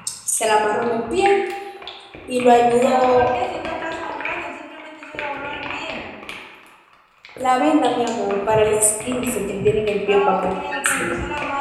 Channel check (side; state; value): both; identical; correlation 1.00